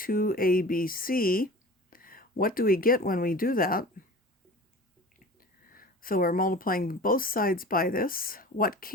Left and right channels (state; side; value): normal; both; correlation 0.39